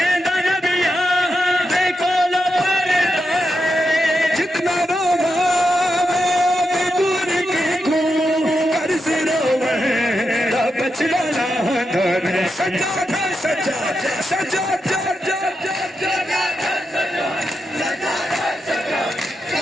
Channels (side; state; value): both; normal; correlation 0.86